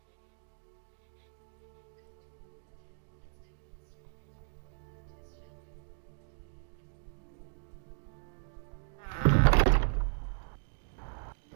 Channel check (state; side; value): silent; left; digital silence